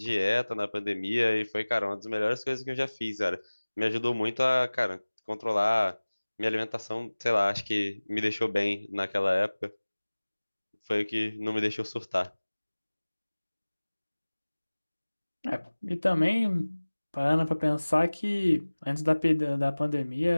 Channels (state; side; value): inverted; both; correlation -1.00